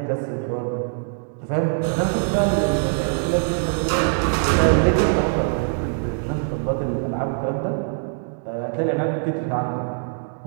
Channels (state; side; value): silent; left; digital silence